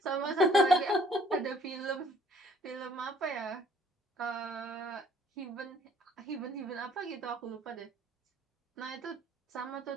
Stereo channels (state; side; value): normal; both; correlation 0.59